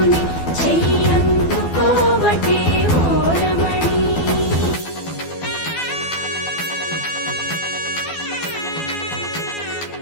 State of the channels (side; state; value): right; late; 12 ms